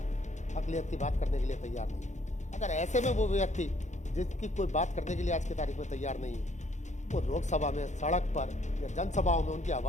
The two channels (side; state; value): right; late; 0.34 ms